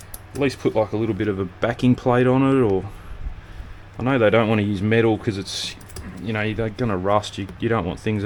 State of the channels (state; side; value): identical; both; correlation 1.00